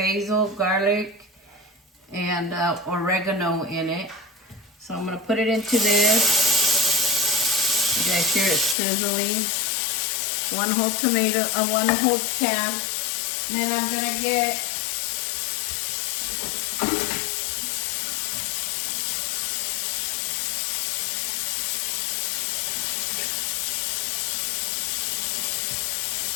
garlic, and oregano in it. So I'm gonna put it into this. You guys hear it sizzling. 1 whole tomato, 1 whole can. Then I'm gonna get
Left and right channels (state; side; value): drops out; right; at 8.8 s